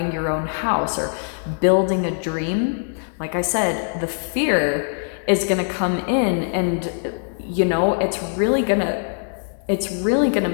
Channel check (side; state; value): right; silent; digital silence